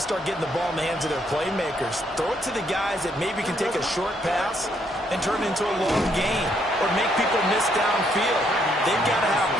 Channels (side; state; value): both; normal; correlation 0.72